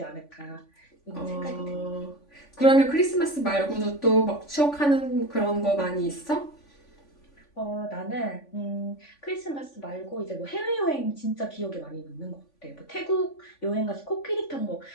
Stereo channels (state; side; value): late; right; 3.5 ms